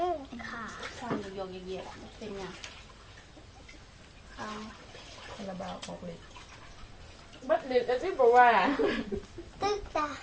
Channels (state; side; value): identical; both; correlation 1.00